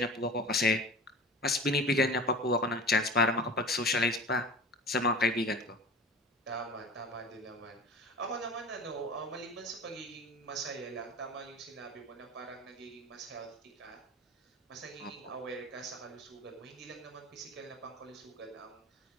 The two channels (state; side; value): normal; both; correlation 0.37